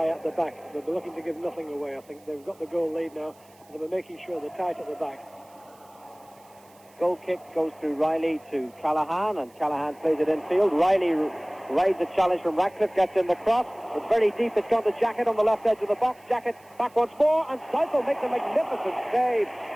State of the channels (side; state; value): right; noise; hiss, 29 dB below the sound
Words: at the back. They'll be looking to give nothing away. I think they've got the goal lead now, and they'll be making sure they're tight at the back. Goal kick goes through Riley to Callahan, and Callahan plays it infield. Riley rides a challenge from Ratcliffe, gets in the cross. It's very deep. It's gone to Jackett on the left edge of the box. Jackett back once more, and Southall makes a magnificent save.